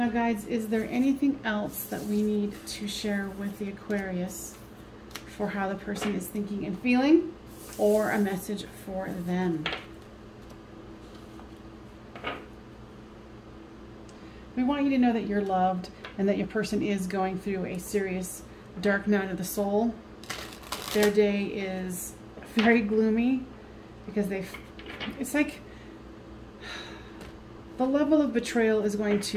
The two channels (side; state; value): both; identical; correlation 1.00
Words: guys, is there anything else that we need to share with the Aquarius for how the person is thinking and feeling, or a message for them? We want you to know that you're loved and that your person is going through a serious dark night of the soul. Their day is very gloomy because it's like the level of betrayal is going